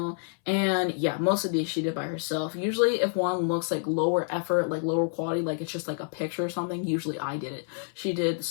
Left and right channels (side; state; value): right; silent; 59 dB below the other